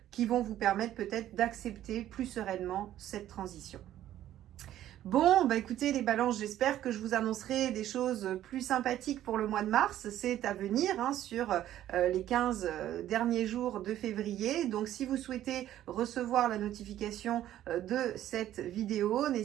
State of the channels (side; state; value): left; quieter; 12.5 dB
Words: qui vont vous permettre peut-être d'accepter plus sereinement cette transition. Bon, bah écoutez les balances, j'espère que je vous annoncerai des choses plus sympathiques pour le mois de mars. C'est à venir hein, sur les 15 derniers jours de février. Donc si vous souhaitez recevoir la notification de cette vidéo,